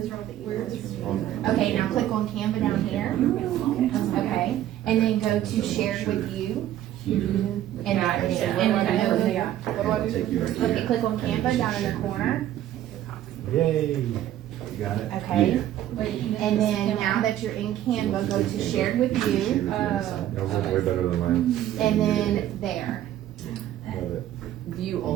Okay, now click on Canva down here. Okay, and then go to shared with you. And what do I do? Okay, click on Canva down in the corner. Yay. You got it? Okay. And then now that you're in Canva, go to shared with you. Yours is way better than mine. And then there. Love it. View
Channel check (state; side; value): quieter; left; 12.4 dB